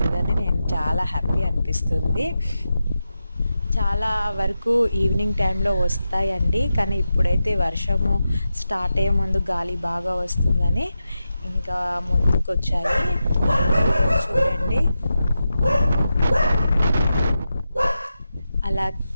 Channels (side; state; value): both; inverted; correlation -0.90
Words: నేను చాలా హ్యాపీ అనిపిస్తుంది. చాలా వరకు ఈవినింగ్ టైంలో వస్తాయండి. కానీ ఇప్పుడైతే వర్షము స్టార్ట్ అయ్యే ముందు గాలి బాగా వస్తుందని ఇంకా ముందుకొచ్చాయి. చూడండి అలా